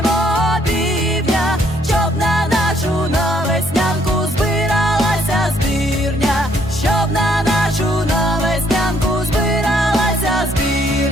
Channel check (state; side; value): normal; both; correlation 0.67